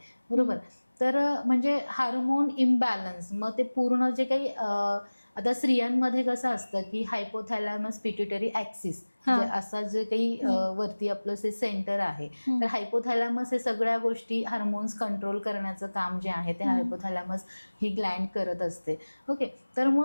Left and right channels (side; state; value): both; inverted; correlation -1.00